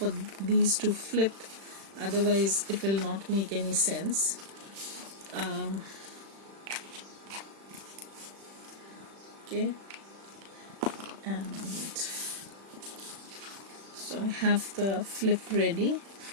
these to flip, otherwise it will not make any sense. Okay, and so I have the flip ready,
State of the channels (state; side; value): late; left; 36 ms